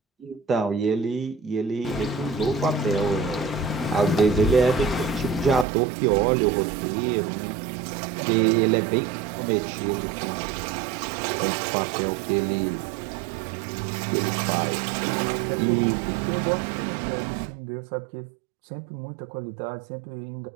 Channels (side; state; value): left; drops out; at 5.7 s